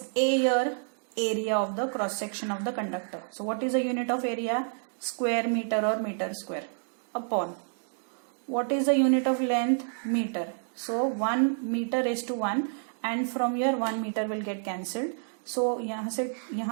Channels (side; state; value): left; silent; digital silence